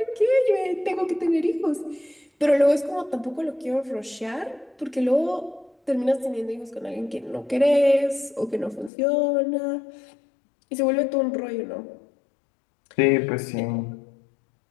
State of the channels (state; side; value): drops out; right; at 8.9 s